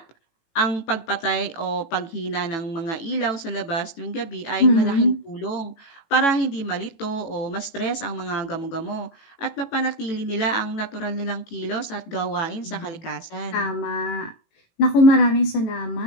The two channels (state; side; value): late; right; 18 ms